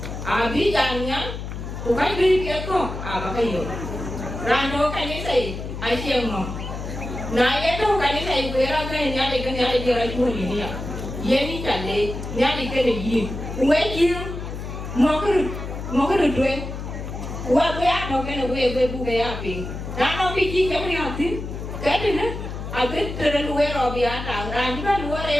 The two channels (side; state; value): left; noise; hum, 7 dB below the sound